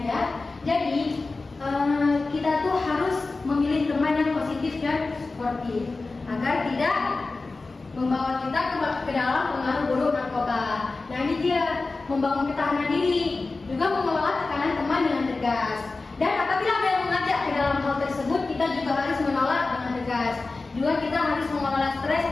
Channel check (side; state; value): right; quieter; 3.6 dB